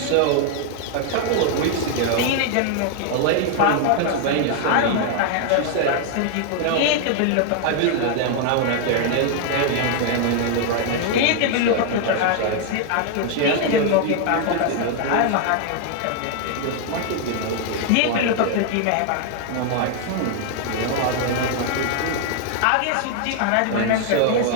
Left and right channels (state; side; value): different; both; correlation 0.00